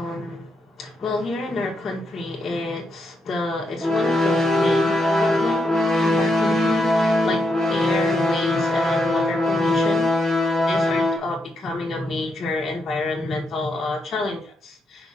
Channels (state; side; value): normal; both; correlation 0.81